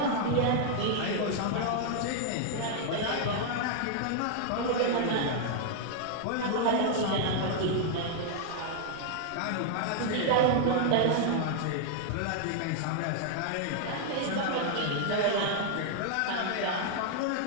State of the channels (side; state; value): both; different; correlation -0.01